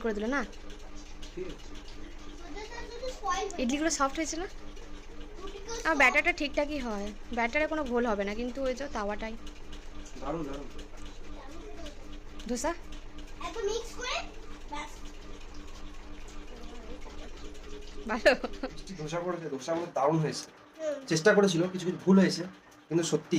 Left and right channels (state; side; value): identical; both; correlation 1.00